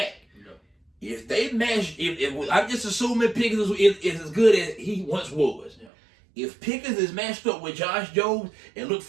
Yeah. If they match, if I'm just assuming Pickens is as good as he once was. Yeah. If Pickens is matched up with Josh Jacobs, and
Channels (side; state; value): left; drops out; at 5.9 s